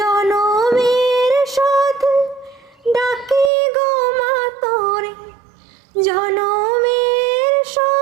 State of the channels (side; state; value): left; drops out; at 3.5 s